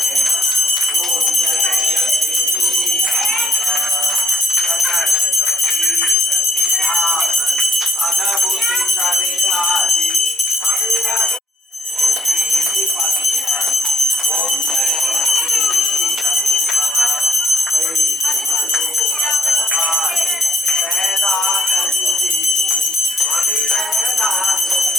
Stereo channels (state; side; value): normal; both; correlation 0.66